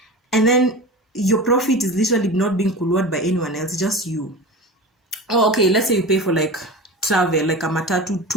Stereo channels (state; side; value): normal; both; correlation 0.30